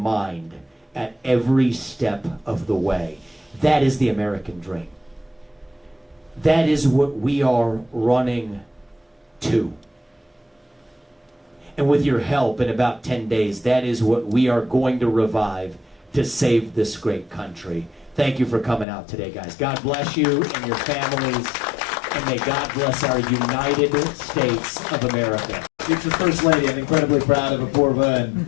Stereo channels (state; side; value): drops out; right; at 18.9 s